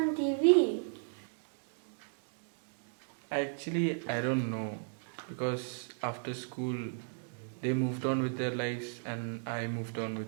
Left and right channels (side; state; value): left; silent; digital silence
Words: on TV? Actually, I don't know, because after school they moved on with their lives and I moved on